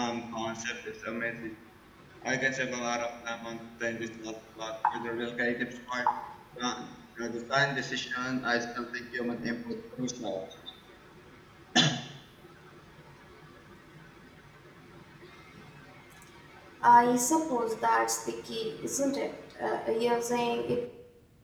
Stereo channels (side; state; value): both; identical; correlation 1.00